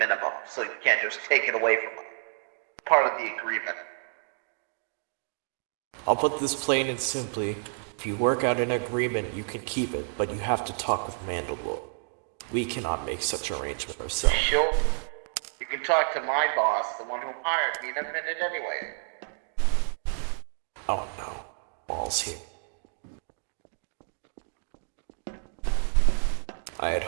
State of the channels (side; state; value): left; silent; 58 dB below the other